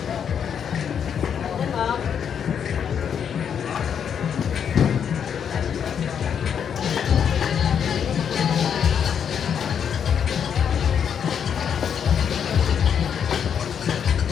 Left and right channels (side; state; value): right; quieter; 7.9 dB